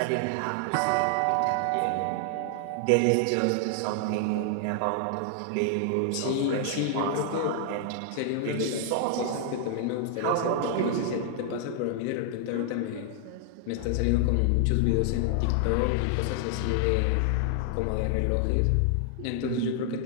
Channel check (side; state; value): both; different; correlation 0.00